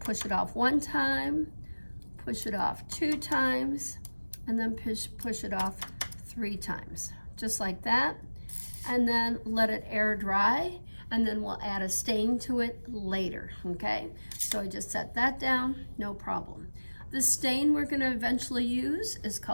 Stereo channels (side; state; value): both; inverted; correlation -1.00